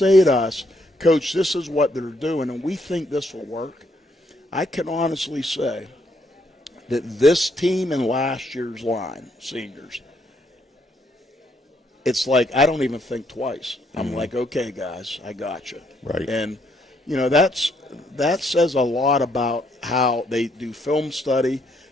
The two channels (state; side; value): normal; both; correlation 0.72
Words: to us, Coach, this is what they're doing, and we think this will work, I can honestly say that this team and last year's line, seniors, it's like I don't even think twice. I'm like, okay, guys, I got you. Right. And, you know, that says a lot about how they do film study,